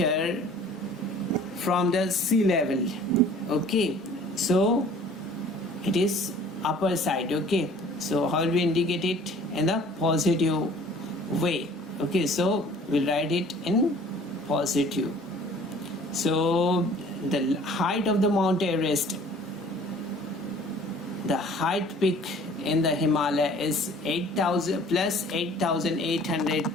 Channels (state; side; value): normal; both; correlation 0.51